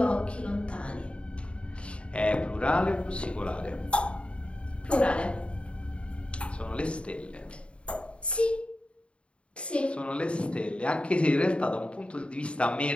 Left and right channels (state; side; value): late; right; 0.058 ms